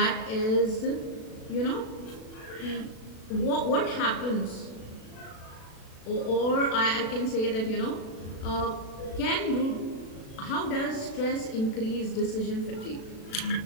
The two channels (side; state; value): right; late; 36 ms